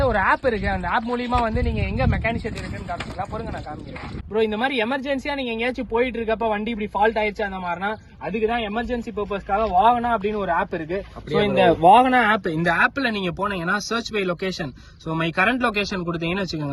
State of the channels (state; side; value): identical; both; correlation 1.00